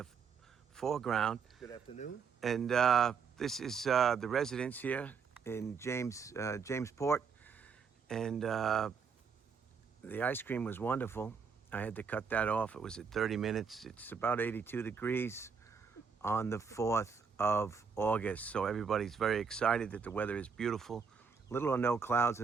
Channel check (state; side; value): quieter; left; 5.9 dB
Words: foreground. Good afternoon. And this is the residence here in Jamesport. And the ice cream was wonderful. I had to cut that off. It was at 30 minutes. It's about 82 degrees on the 4th of August. So everybody's very excited that the weather is beautiful. Little or no clouds